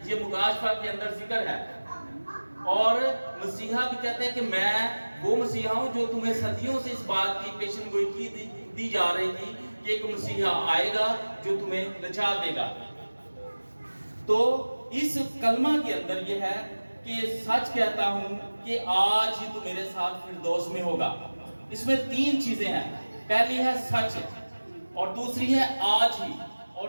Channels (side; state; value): both; inverted; correlation -1.00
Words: ये मुकाशवा के अंदर जिक्र है। और मसीहा भी कहते हैं कि मैं वो मसीहा हूं जो तुम्हें सदियों से इस बात की पेशन गोई की दी जा रही थी कि एक मसीहा आएगा जो तुम्हें निजात देगा। तो इस कलमा के अंदर ये है कि सच कहता हूं कि आज ही तू मेरे साथ फिरदौस में होगा। इसमें तीन चीजें हैं। पहली है सच, और दूसरी है आज ही,